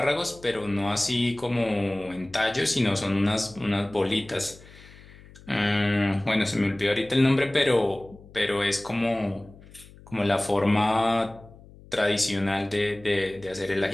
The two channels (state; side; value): noise; left; hum, 22 dB below the sound